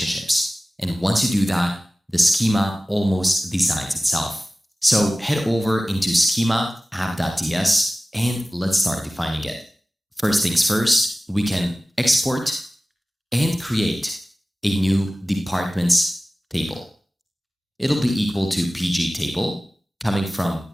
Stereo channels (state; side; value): normal; both; correlation 0.96